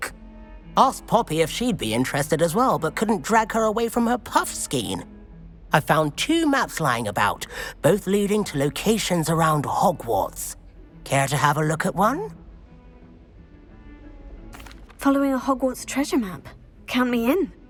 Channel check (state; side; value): identical; both; correlation 1.00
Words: Asked Poppy if she'd be interested as well, but couldn't drag her away from her puff skein. I found 2 maps lying about, both leading to locations around Hogwarts. Care to have a look at one? Following a Hogwarts treasure map. Count me in.